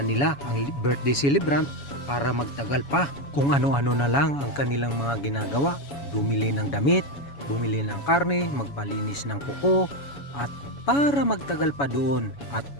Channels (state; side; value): late; right; 7.1 ms